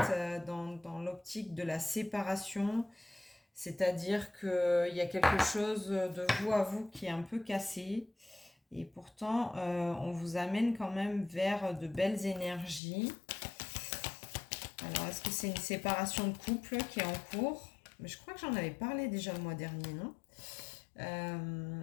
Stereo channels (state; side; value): drops out; right; at 12.8 s